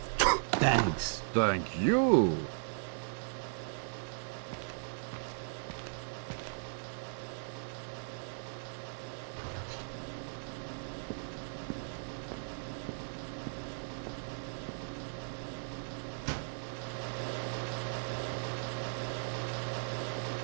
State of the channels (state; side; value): silent; left; digital silence